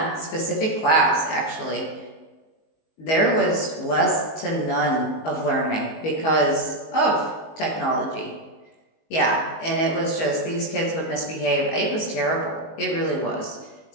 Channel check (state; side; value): late; right; 19 ms